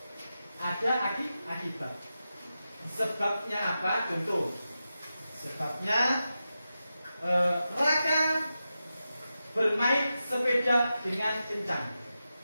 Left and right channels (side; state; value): both; inverted; correlation -0.91